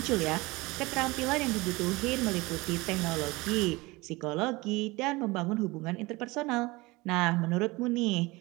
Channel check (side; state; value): left; quieter; 22.6 dB